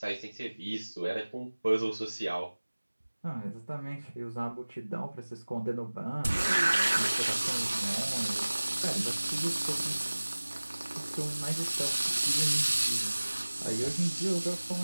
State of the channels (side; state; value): both; inverted; correlation -1.00